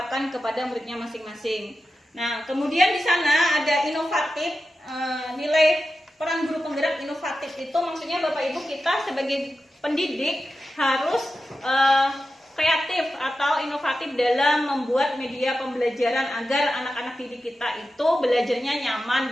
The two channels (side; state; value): both; normal; correlation 0.92